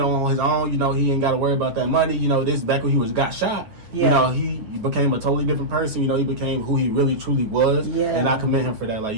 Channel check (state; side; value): late; left; 9.4 ms